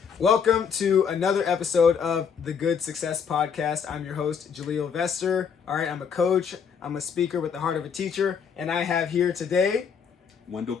Welcome to another episode of the Good Success Podcast. I'm your host, Jahleel Vester. All right, I'm a coach. I'm a speaker with the heart of a teacher. And I have here today... Wendell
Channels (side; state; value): right; quieter; 6.8 dB